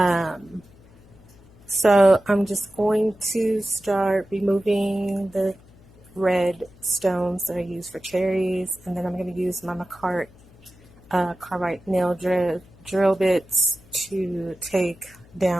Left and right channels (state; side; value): noise; left; hum, 25 dB below the sound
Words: So I'm just going to start removing the red stones that I use for cherries, and then I'm going to use my Makartt carbide nail drill bits to take